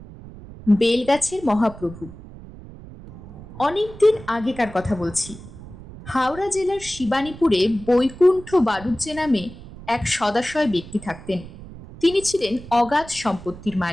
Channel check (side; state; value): right; noise; rumble, 16 dB below the sound